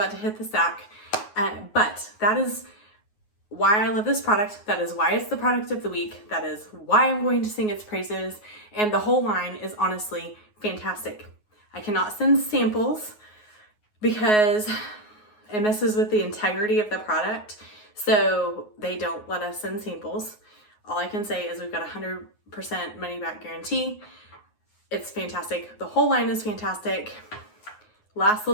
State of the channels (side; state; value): right; late; 9.5 ms